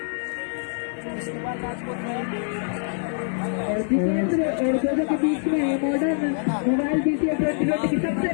और जितेंद्र और जोजो के बीच में मॉडर्न मोबाइल BCL 2020 की सबसे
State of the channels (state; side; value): silent; right; 62 dB below the other